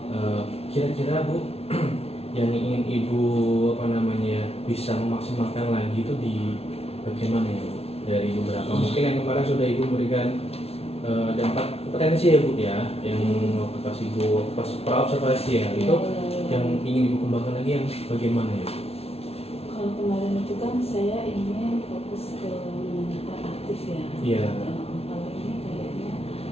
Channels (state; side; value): late; right; 0.30 ms